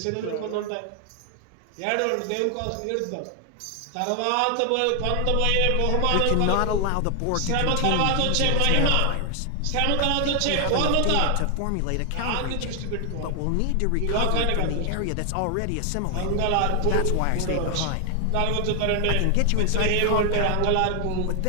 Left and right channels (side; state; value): both; different; correlation 0.00